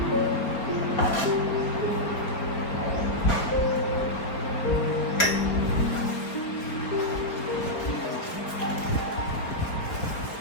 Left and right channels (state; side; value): late; right; 4.5 ms